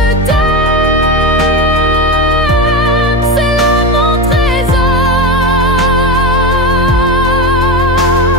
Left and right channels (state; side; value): normal; both; correlation 0.19